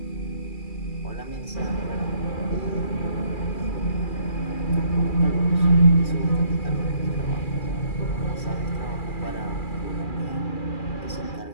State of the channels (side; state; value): right; late; 2.4 ms